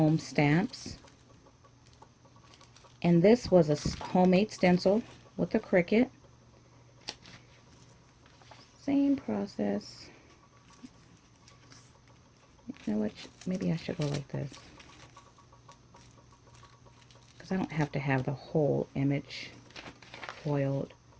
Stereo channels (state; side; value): identical; both; correlation 1.00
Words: stamps. And this was a homemade stencil with a Cricut. Same process. You know what? Maybe I should go like this, because I don't have to have the whole image foiled,